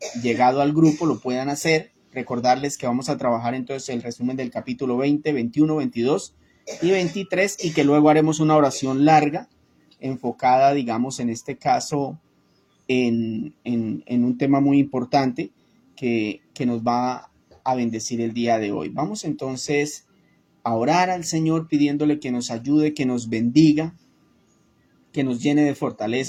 llegado al grupo lo puedan hacer. Recordarles que vamos a trabajar entonces el resumen del capítulo 20, 21, 22 y 23, y que luego haremos una oración larga enfocada, digamos, en este caso, en un tema muy importante que nos va a bendecir el día de hoy. Vamos entonces a orar al Señor pidiéndole que nos ayude, que nos bendiga, que nos llene de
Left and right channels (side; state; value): both; identical; correlation 1.00